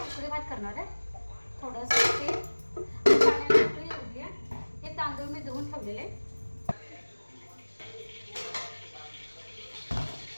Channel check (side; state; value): both; inverted; correlation -1.00